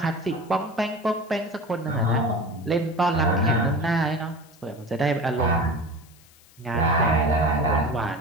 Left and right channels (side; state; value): left; noise; hiss, 27 dB below the sound